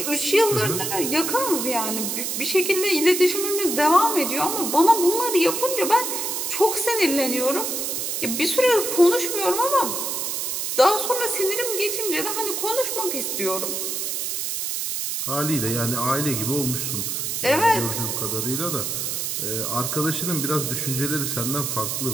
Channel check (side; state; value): right; noise; hiss, 2 dB below the sound